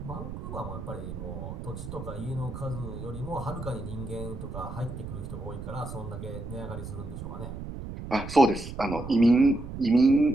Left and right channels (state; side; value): noise; right; rumble, 8 dB below the sound